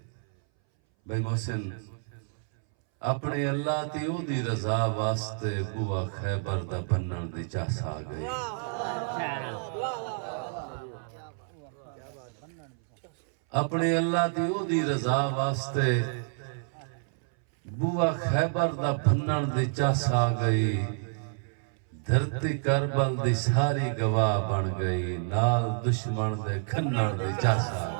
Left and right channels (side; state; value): left; silent; 59 dB below the other